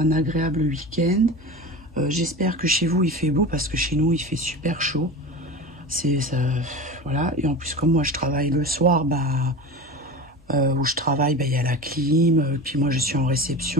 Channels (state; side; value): normal; both; correlation 0.30